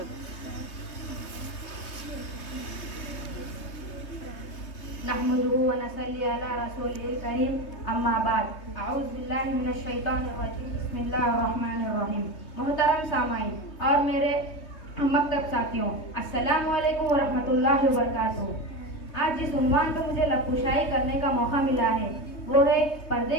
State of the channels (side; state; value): right; late; 3.2 ms